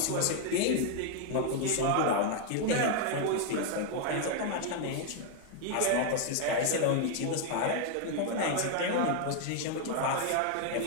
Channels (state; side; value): different; both; correlation 0.00